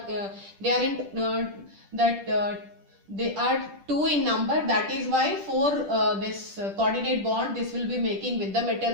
they are in they are 2 in number, that is why for this coordinate bond this will be making with the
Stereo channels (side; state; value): left; late; 10 ms